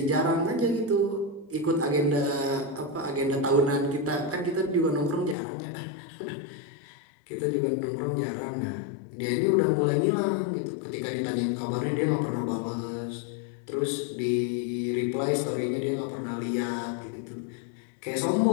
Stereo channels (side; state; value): right; drops out; at 5.4 s